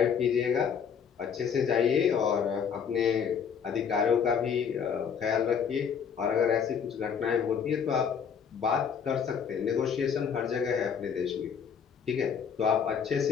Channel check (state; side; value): quieter; right; 7.1 dB